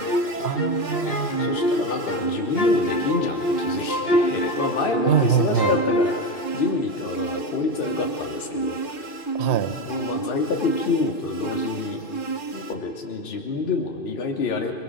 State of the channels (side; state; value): right; late; 2.6 ms